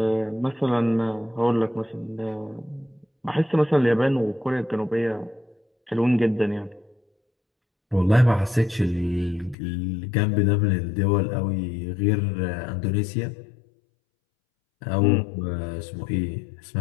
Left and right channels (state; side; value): drops out; right; at 9.6 s